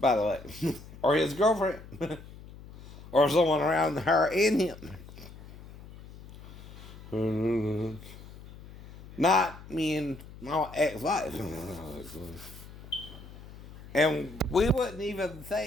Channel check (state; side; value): noise; left; hum, 17 dB below the sound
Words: the way. Or his girlfriend. Or someone around her and him. Not me and my ex-wife. And we wouldn't even